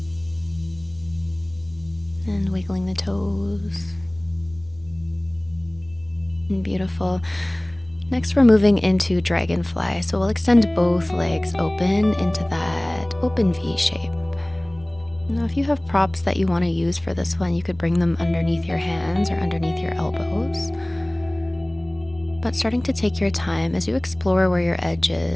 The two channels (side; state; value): left; noise; rumble, 24 dB below the sound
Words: And wiggling the toes. And beautiful. Next, we're moving into Dragonfly. So we'll extend both legs open into that open V shape. Now, if you have props that you want to use for this one, you could bring them underneath your hands or underneath your elbows. But starting to take your time as you explore where your edge